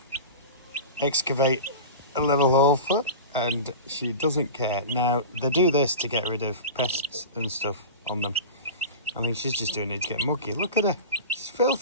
excavate a little hole for, and she doesn't care. Now, they do this to get rid of pests and stuff on them. I think she's just doing it to get mucky. Look at her, she's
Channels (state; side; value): inverted; both; correlation -0.30